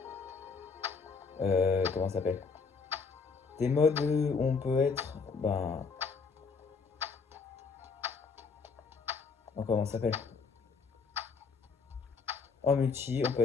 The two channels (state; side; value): quieter; right; 5.0 dB